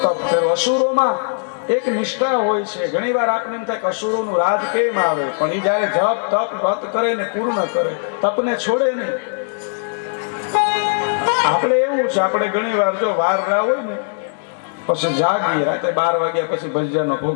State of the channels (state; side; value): silent; right; digital silence